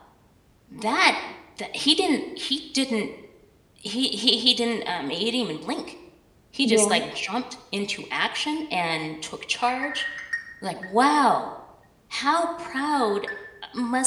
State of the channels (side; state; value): both; identical; correlation 1.00